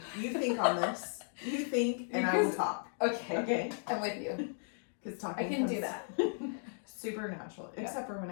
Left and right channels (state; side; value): silent; right; digital silence